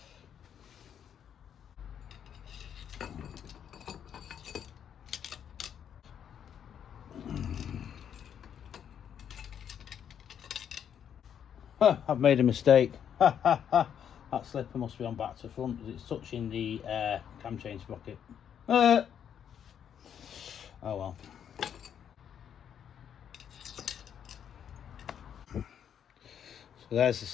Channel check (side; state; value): right; quieter; 8.7 dB